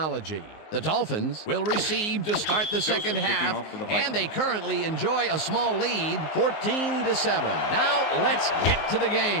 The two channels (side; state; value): right; late; 19 ms